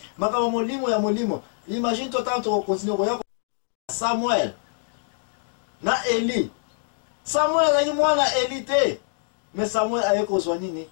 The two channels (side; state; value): right; silent; digital silence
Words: maka molimo ya molimo. Imagine toi tant to continue ko yako Samuel na Eli. Samuel azaki mwana Eli te mais Samuel ayeko zwa nini